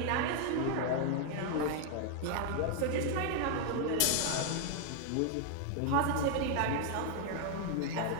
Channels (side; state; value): both; different; correlation 0.00